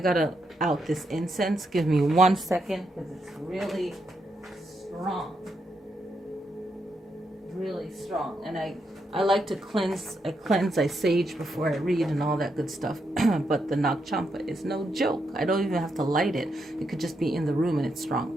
out this incense. Give me 1 second, because it's really strong. Really strong. And I like to cleanse. I sage before I read and all that good stuff. But the Nag Champa is no joke. I don't even have to light it. It could just be in the room and it's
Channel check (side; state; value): both; normal; correlation 0.81